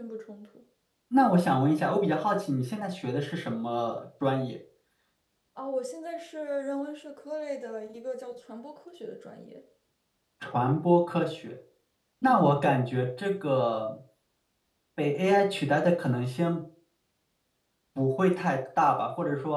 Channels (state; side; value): identical; both; correlation 1.00